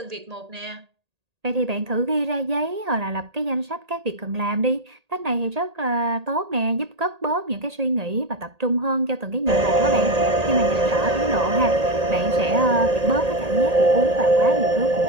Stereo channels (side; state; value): left; late; 1.8 ms